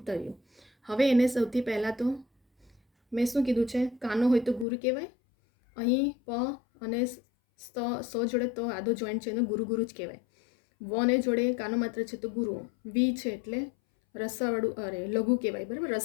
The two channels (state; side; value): drops out; right; at 4.7 s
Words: હવે એને સૌથી પહેલાં તો મેં શું કીધું છે? કાનો હોય તો ગુરુ કહેવાય. અહીં પ અને સ જોડે તો આદો જોઈન્ટ છે, એનું ગુરુ ગુરુ જ કહેવાય. વને જોડે કાનો માત્ર છે તો ગુરુ. વી છે એટલે રસવાળું લઘુ કહેવાય. બરાબર,